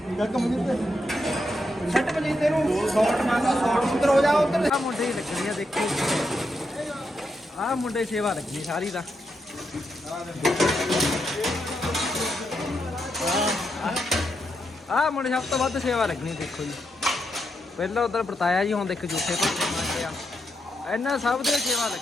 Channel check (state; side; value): normal; both; correlation 0.82